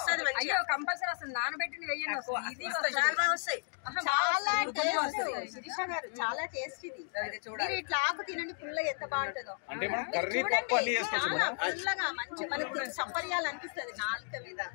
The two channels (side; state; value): right; silent; 55 dB below the other